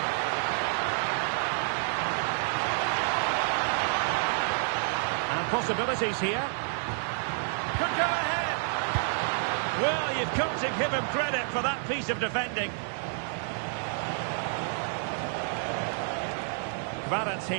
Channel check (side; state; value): left; silent; 56 dB below the other